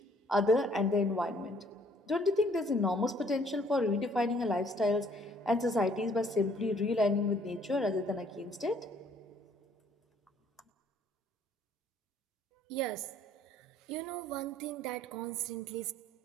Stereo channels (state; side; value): normal; both; correlation 0.61